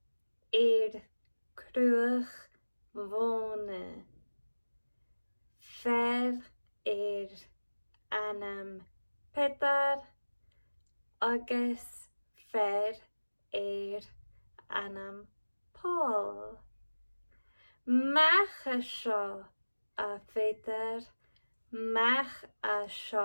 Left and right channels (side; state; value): both; inverted; correlation -1.00